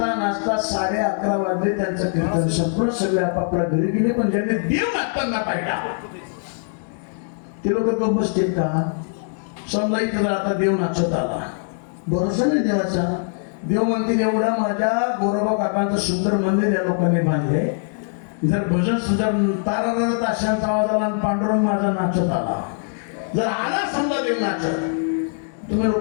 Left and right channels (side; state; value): right; silent; 64 dB below the other